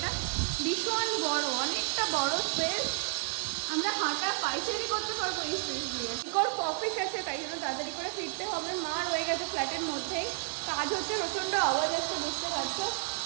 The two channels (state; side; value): silent; left; 57 dB below the other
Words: ভীষণ বড়, অনেকটা বড় স্পেস, আমরা হাঁটা পাইচারি করতে পারবো এই স্পেস দিয়ে। ইকোর অফিস আছে, তাই জন্য তাড়াতাড়ি করে ফিরতে হবে। মা রয়ে গেছে ফ্ল্যাটের মধ্যেই, কাজ হচ্ছে, প্রচন্ড আওয়াজ আসছে, বুঝতে পারছো।